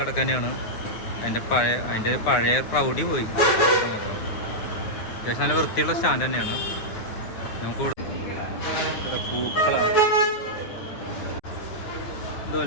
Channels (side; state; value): right; late; 9.5 ms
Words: തന്നെയാണ്. അതിൻ്റെ പഴയ പ്രൗഢി പോയി മാത്രം. അത്യാവശ്യം നല്ല വൃത്തിയുള്ള സ്റ്റാൻഡ് തന്നെയാണ്. നമുക്ക് ഇവിടെ പൂക്കളാണ്.